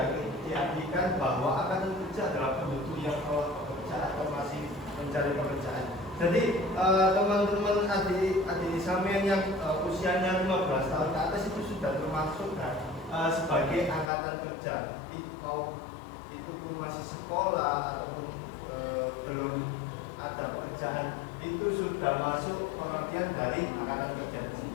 diartikan bahwa akan bekerja dalam penduduk yang telah bekerja atau masih mencari pekerjaan. Jadi teman-teman adik sampean yang usianya 15 tahun ke atas itu sudah termasuk kan, sebagai angkatan kerja. Itu pun masih sekolah ataupun belum ada pekerjaan, itu sudah masuk pengertian dari angkatan kerja di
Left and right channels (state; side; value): drops out; right; at 14.1 s